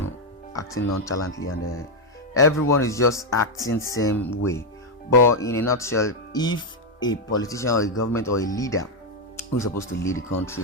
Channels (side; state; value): both; normal; correlation 0.03